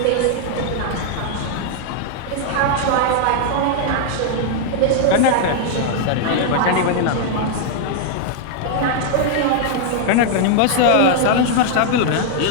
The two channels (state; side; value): different; both; correlation 0.00